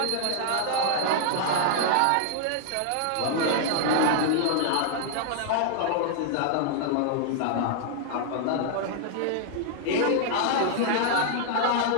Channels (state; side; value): different; both; correlation 0.00